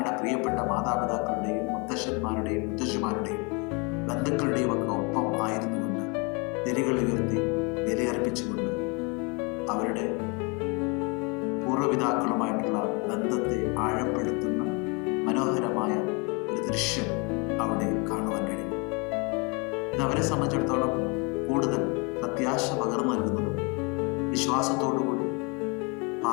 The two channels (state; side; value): quieter; right; 31.2 dB